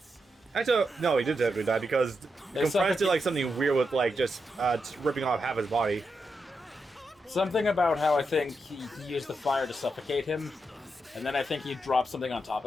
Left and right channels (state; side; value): normal; both; correlation 0.85